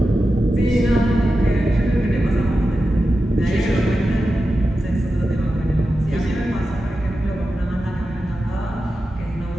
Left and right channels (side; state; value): both; normal; correlation 0.91